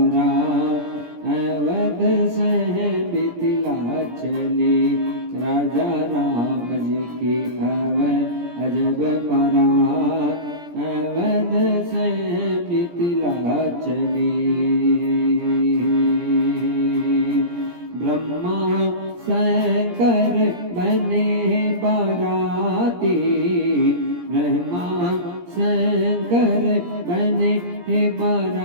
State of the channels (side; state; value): left; late; 17 ms